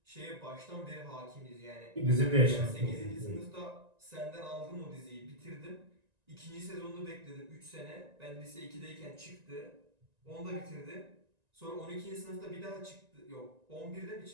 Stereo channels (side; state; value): left; late; 1.9 ms